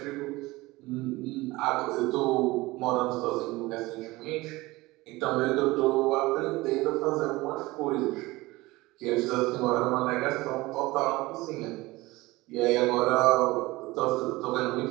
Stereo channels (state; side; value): quieter; left; 20.5 dB